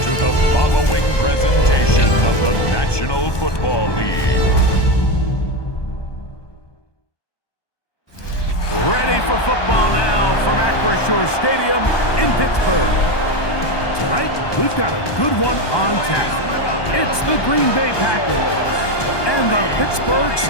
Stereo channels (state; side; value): late; right; 1.2 ms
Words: the following presentation of the National Football League. Ready for football now from Acrisure Stadium in Pittsburgh. Tonight, we've got a good one on tap. It's the Green Bay Packers and the Pittsburgh